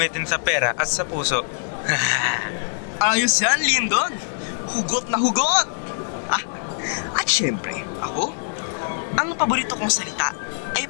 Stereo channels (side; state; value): right; silent; digital silence